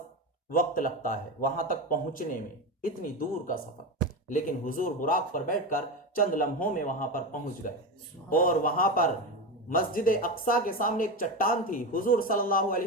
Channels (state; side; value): normal; both; correlation 0.18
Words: وقت لگتا ہے وہاں تک پہنچنے میں، اتنی دور کا سفر۔ لیکن حضور براق پر بیٹھ کر چند لمحوں میں وہاں پر پہنچ گئے، اور وہاں پر مسجد اقصی کے سامنے ایک چٹان تھی، حضور صلی اللہ